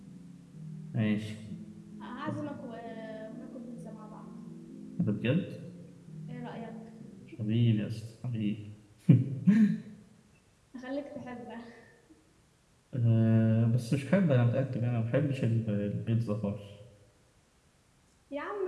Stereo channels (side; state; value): both; identical; correlation 1.00